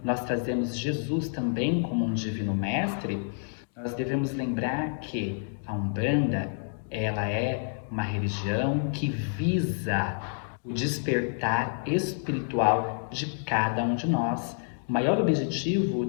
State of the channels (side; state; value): right; silent; digital silence